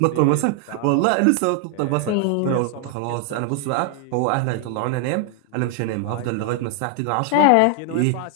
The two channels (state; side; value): different; both; correlation 0.00